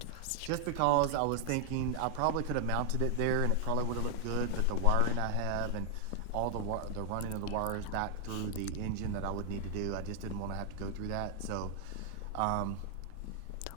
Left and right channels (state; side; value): different; both; correlation 0.00